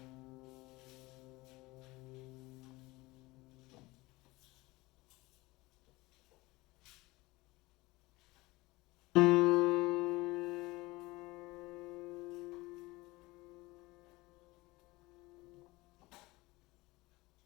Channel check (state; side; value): quieter; right; 21.3 dB